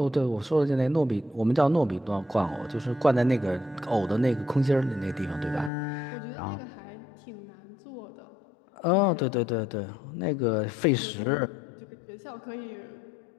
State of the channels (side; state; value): right; drops out; at 5.7 s